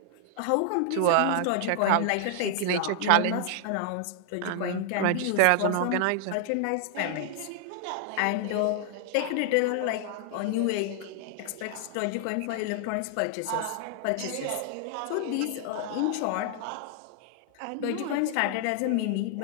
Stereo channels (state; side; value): different; both; correlation -0.01